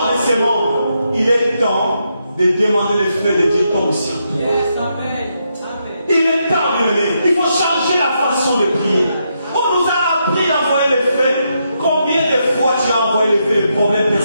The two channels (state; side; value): inverted; both; correlation -0.81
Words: de ce monde. Il est temps de demander le feu de Dieu tombe au ciel. Il est temps, bien-aimé. Il faut changer la façon de prier. On nous a appris d'envoyer le feu. Combien de fois tu as envoyé le feu, le problème